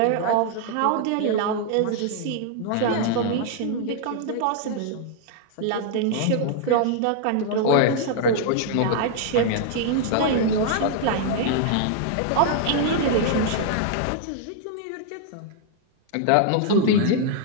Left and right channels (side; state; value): both; different; correlation -0.01